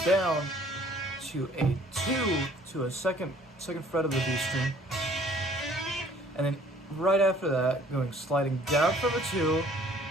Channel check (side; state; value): both; normal; correlation 0.56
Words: to a 2 to a second fret of the B string. And then right after that, sliding down from a 2,